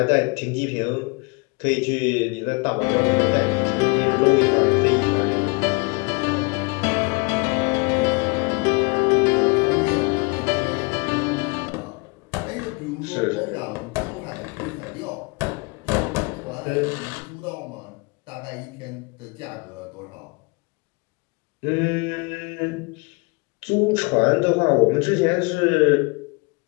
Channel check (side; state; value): right; quieter; 30.8 dB